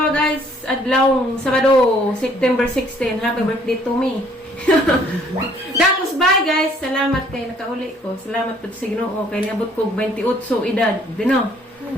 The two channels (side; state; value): both; normal; correlation 0.61